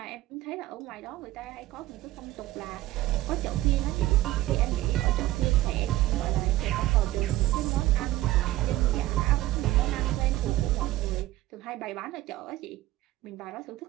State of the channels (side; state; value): left; quieter; 16.3 dB